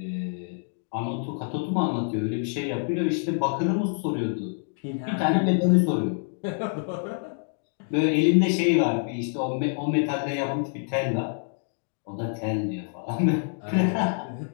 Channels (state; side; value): silent; right; 61 dB below the other